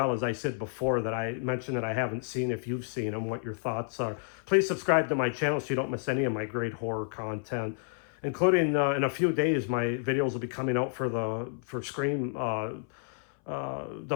as I said before, that I mentioned that I haven't seen, if you've seen them, what your thoughts are. Please subscribe to my channel so you don't miss any of my great horror content, including in a few days my videos will be coming out for Scream, the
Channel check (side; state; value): right; silent; 58 dB below the other